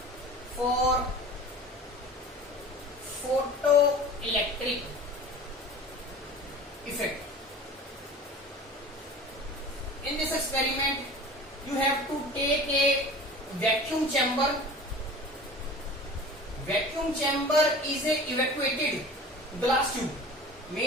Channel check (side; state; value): both; normal; correlation 0.39